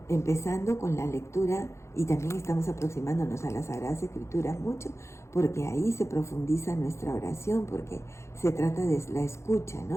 empezando con la lectura Y también estamos aproximándonos a las Sagradas Escrituras mucho, porque ahí se profundiza nuestra oración, porque se trata de la escucha,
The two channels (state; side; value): late; right; 0.13 ms